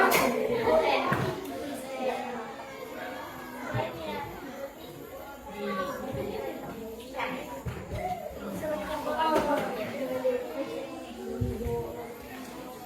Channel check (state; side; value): identical; both; correlation 1.00